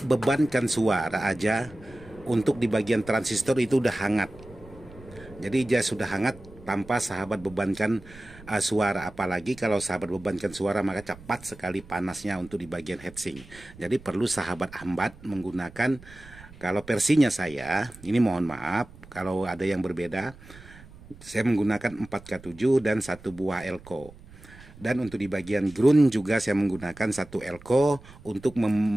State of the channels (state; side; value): noise; right; rumble, 20 dB below the sound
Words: bebankan suara aja, untuk di bagian transistor itu udah hangat. Jadi dia sudah hangat tanpa sahabat bebankan suara. Apalagi kalau sahabat bebankan suara maka cepat sekali panasnya untuk di bagian heatsink. Jadi perlu sahabat hambat menggunakan, kalau versinya saya ini, mohon maaf kalau ada yang berbeda, saya menggunakan 4K7 dan satu buah elko. Dan untuk di bagian ground juga saya menggunakan satu elko untuk